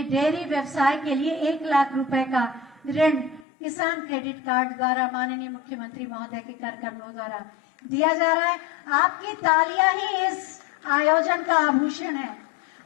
डेयरी व्यवसाय के लिए 1 लाख रुपए का ऋण किसान क्रेडिट कार्ड द्वारा माननीय मुख्यमंत्री महोदय के कर कमलों द्वारा दिया जा रहा है। आपकी तालियां ही इस आयोजन का आभूषण है।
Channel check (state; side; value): drops out; right; at 3.5 s